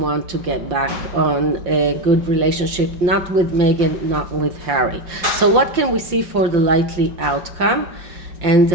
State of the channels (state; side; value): late; left; 5.7 ms